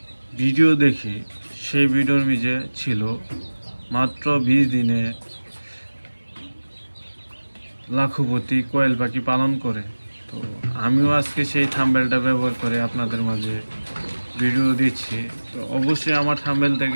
ভিডিও দেখি, সেই ভিডিওর নিচে ছিল মাত্র 20 দিনে লাখপতি কোয়েল পাখি পালন করে। তো আমিও আজকে সেই থাম্বনেলটা ব্যবহার করে আপনাদের মাঝে ভিডিও দিচ্ছি। তো অবশ্যই আমার থাম্বনেল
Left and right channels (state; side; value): inverted; both; correlation -1.00